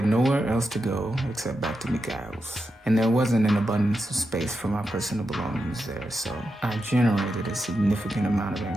nowhere else to go except back to Mikhail's, and there wasn't an abundance of space for my personal belongings there, so I generated a significant amount of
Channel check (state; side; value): normal; both; correlation 0.87